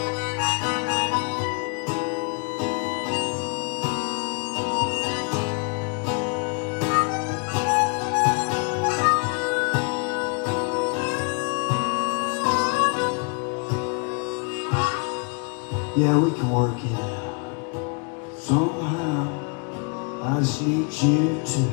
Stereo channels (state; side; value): quieter; right; 38.2 dB